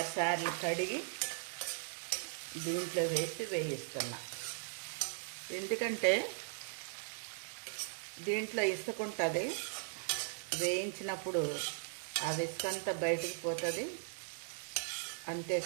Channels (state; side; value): silent; left; digital silence